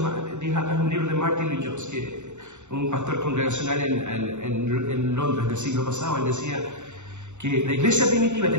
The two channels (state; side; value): late; left; 0.84 ms